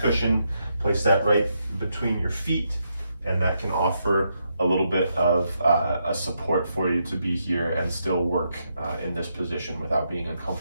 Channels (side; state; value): both; inverted; correlation -0.80